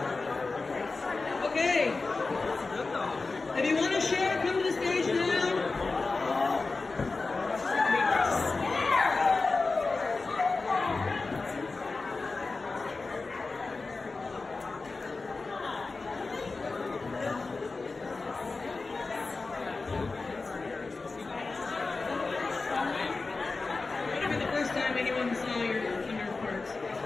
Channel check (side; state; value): right; quieter; 3.8 dB